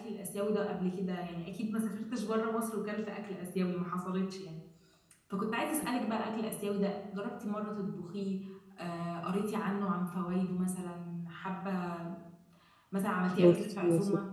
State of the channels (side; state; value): both; identical; correlation 1.00